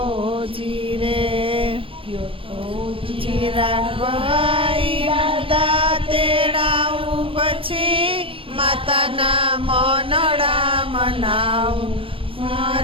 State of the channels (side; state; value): left; late; 0.26 ms